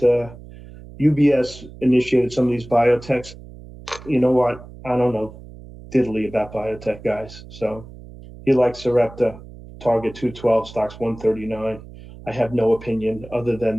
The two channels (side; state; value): right; noise; hum, 17 dB below the sound